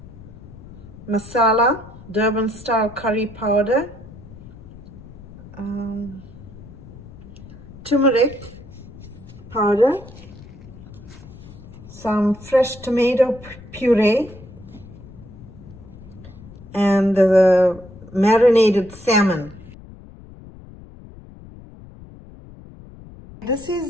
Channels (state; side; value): noise; left; rumble, 18 dB below the sound